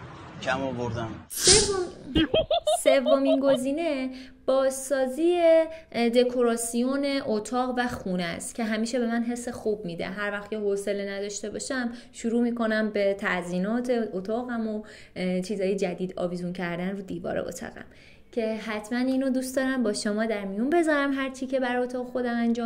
کم آوردم. سومین گزینه بازسازی دکوراسیون اتاق و خونه است که همیشه به من حس خوب میده. هر وقت که حوصله نداشته باشم شروع میکنم به تزیینات اتاقم و چیزای جدید آویزون کردن رو دیوار اتاقم که حتما اینو دوست دارم با شما در میون بذارم هر چی که برای اتاق خودم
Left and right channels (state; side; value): identical; both; correlation 1.00